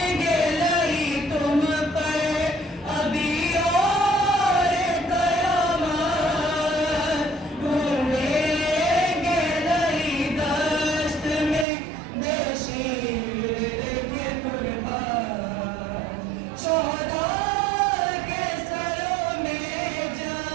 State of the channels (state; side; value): drops out; left; at 11.7 s